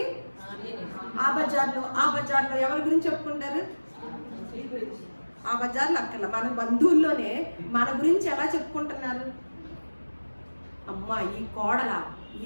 ఆ బజార్లో ఎవరి గురించి చెప్పుకుంటారు? ఆ బజార్లో అక్కడ మన బంధువుల్లోనే మన గురించి ఎలా చెప్పుకుంటున్నారు? అమ్మా, ఈ కోడల,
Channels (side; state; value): both; inverted; correlation -1.00